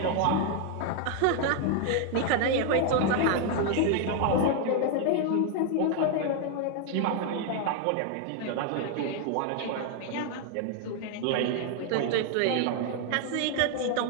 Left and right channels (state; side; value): different; both; correlation 0.01